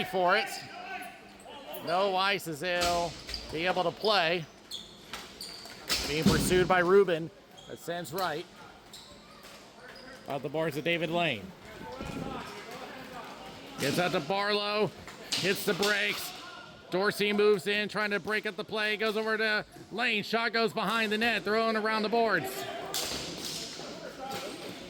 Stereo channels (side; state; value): both; identical; correlation 1.00